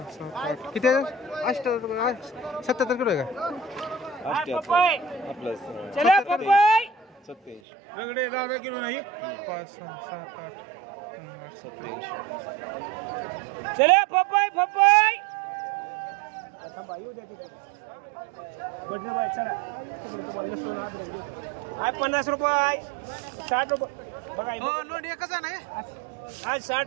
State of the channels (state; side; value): drops out; left; at 7.6 s